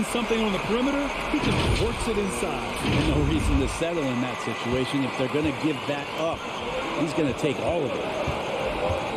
something on the perimeter, he just works it inside. There's no reason to settle in that situation. If they're going to give that up, he's going to take all of it.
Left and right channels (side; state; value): both; identical; correlation 1.00